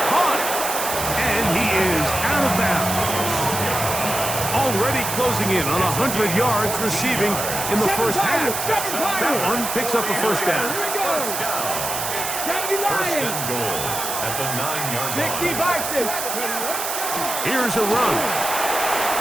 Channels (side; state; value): right; noise; hiss, 4 dB below the sound